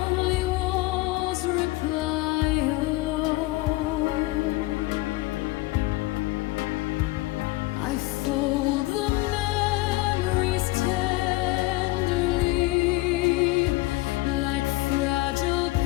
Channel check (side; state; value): right; quieter; 20.3 dB